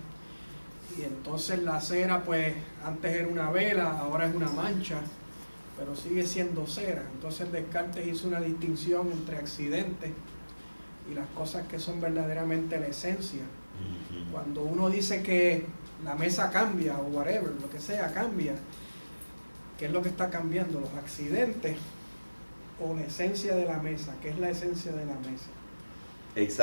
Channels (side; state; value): both; inverted; correlation -1.00